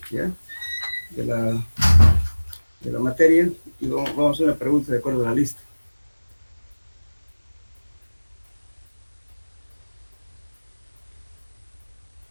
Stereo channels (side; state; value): both; inverted; correlation -1.00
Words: ¿ya? De la, de la materia, y vamos a hacer una pregunta de acuerdo a la lista.